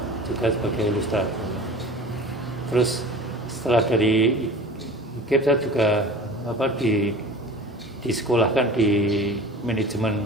juga sebagai ilustrator. Terus setelah dari IKIP saya juga disekolahkan di manajemen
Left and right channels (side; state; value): both; normal; correlation 0.39